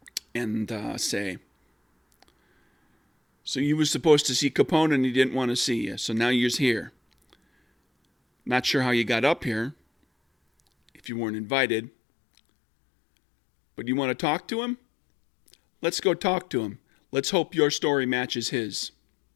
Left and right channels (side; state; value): right; drops out; at 11.0 s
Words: and say, "So you was supposed to see Capone and he didn't want to see you, so now you're here. Not sure how you got up here, if you weren't invited. But you want to talk to him? Let's go talk to him. Let's hope your story matches his."